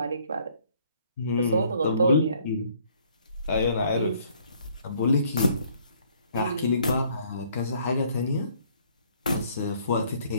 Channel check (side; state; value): both; inverted; correlation -0.62